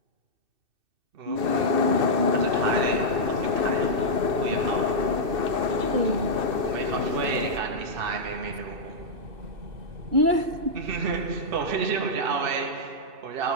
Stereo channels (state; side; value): late; left; 2.6 ms